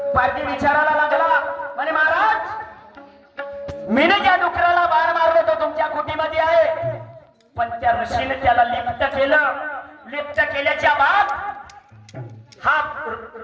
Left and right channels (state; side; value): identical; both; correlation 1.00